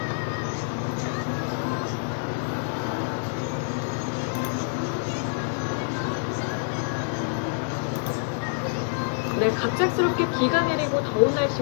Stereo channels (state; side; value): silent; right; digital silence